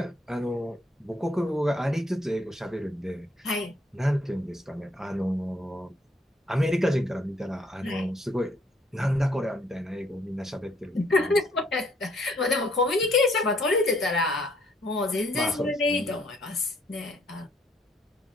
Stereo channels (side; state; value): both; normal; correlation 0.67